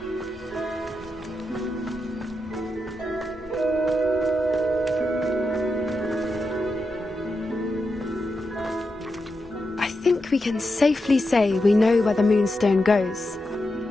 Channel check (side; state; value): both; normal; correlation 0.87